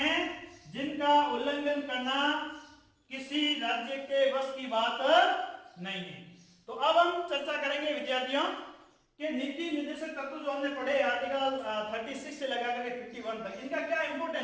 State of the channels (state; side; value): identical; both; correlation 1.00